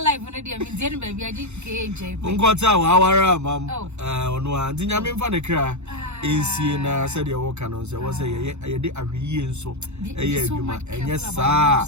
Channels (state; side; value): late; left; 0.82 ms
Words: life when I did baby. I did KJ. Unquata, our mam. On one, didn't I mean for the cry? In said your walk on, so was a year so a year, and yes, sir,